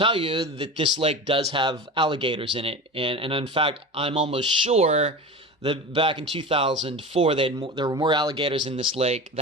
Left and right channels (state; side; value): normal; both; correlation 0.29